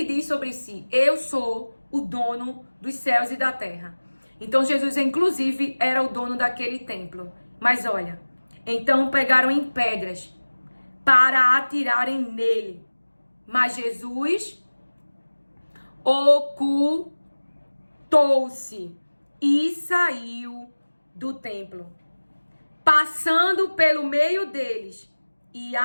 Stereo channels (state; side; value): inverted; both; correlation -1.00